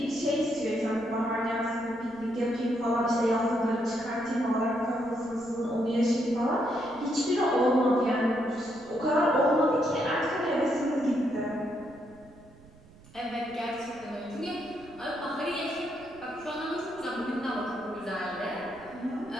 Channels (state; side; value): noise; right; rumble, 24 dB below the sound